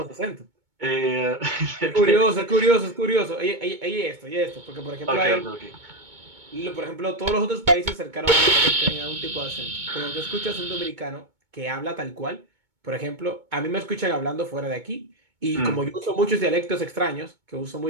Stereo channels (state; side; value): late; left; 2.2 ms